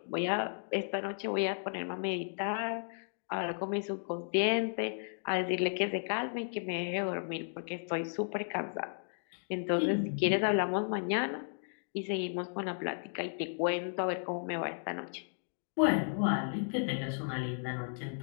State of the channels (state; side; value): silent; right; digital silence